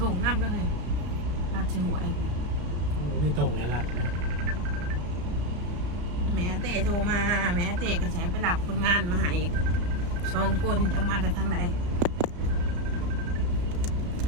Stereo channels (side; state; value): left; late; 34 ms